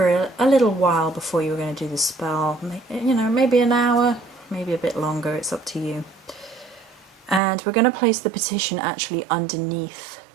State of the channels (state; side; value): drops out; left; at 7.4 s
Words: a little while before you were going to do the spell. You know, maybe an hour, maybe a bit longer, it's up to you. And we're going to place the petition actually underneath